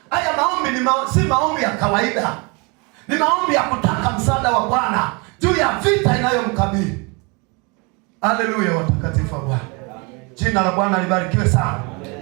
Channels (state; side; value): quieter; left; 30.1 dB